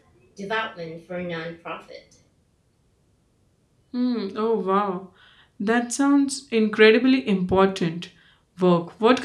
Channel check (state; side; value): identical; both; correlation 1.00